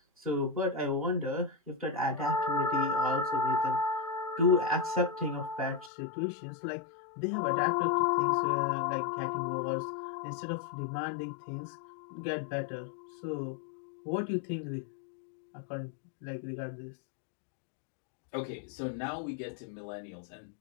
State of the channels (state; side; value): drops out; right; at 5.9 s